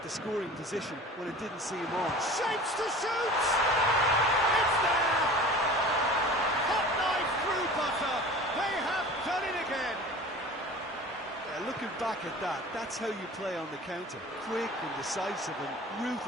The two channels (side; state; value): both; normal; correlation 0.40